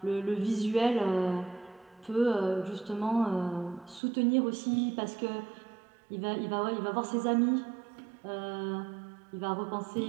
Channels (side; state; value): left; drops out; at 4.0 s